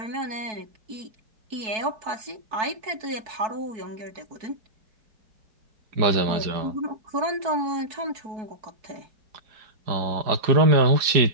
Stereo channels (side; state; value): left; late; 4.6 ms